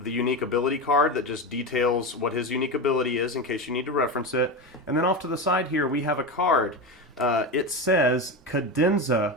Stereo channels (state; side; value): normal; both; correlation 0.19